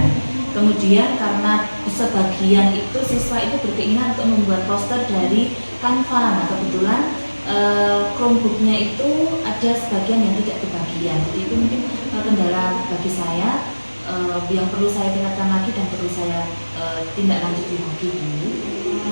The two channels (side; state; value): both; inverted; correlation -1.00